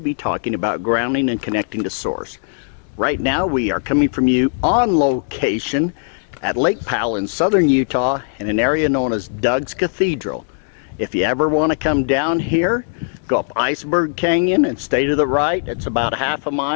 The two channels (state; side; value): silent; right; digital silence